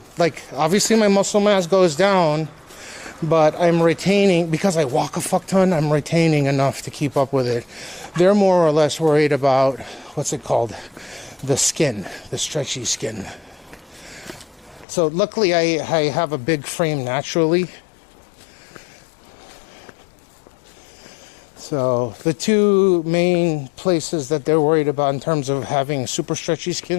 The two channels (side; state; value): right; drops out; at 14.9 s